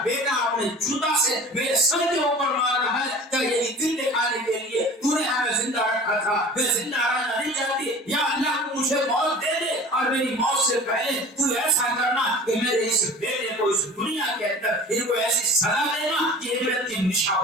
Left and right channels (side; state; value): both; normal; correlation 0.41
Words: بیٹا اپنے جوتا سے میرے سر کے اوپر مار رہا ہے؟ کیا یہی دن دکھانے کے لیے تو نے ہمیں زندہ رکھا تھا؟ میں زندہ رہنا نہیں چاہتی، یا اللہ تو مجھے موت دے دے، اور میری موت سے پہلے تو ایسا کرنا کہ میرے اس بیٹے کو اس دنیا کے اندر ان کو ایسی سزا دینا کہ عبرت کی